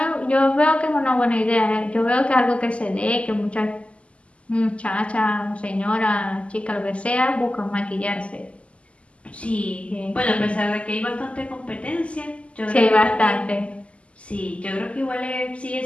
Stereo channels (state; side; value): late; right; 0.060 ms